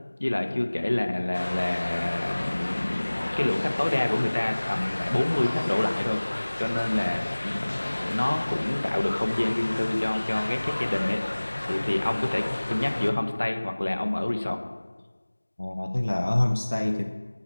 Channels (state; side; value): inverted; both; correlation -1.00